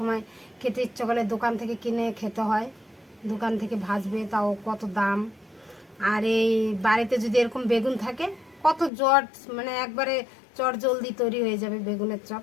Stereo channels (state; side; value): drops out; right; at 8.9 s